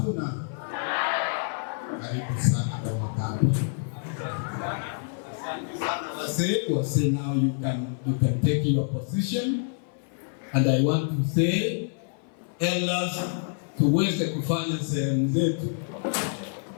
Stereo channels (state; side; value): silent; right; 56 dB below the other